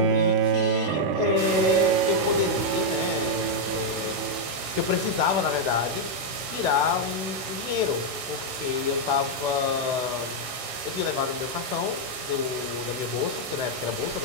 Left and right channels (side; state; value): left; late; 16 ms